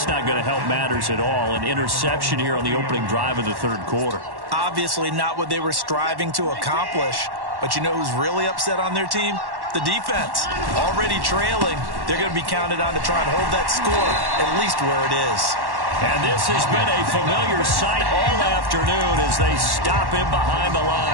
not going to help matters at all. An interception here on the opening drive of the 3rd quarter. Obviously not what they were striving to accomplish. But you know who's really upset on their team? The defense. Already trailing. They're going to be counted on to try and hold that score at least where it is. And this has been a familiar sight all afternoon as they stop him behind the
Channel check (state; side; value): late; left; 1.1 ms